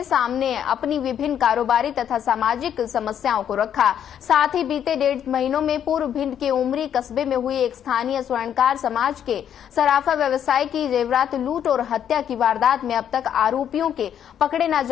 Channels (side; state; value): right; quieter; 9.3 dB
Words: सामने अपनी विभिन्न कारोबारी तथा सामाजिक समस्याओं को रखा। साथ ही बीते 1.5 महीनों में पूर्व भिंड के उमरी कस्बे में हुई एक स्थानीय स्वर्णकार समाज के सराफा व्यवसाय की जेवरात लूट और हत्या की वारदात में अब तक आरोपियों के पकड़े न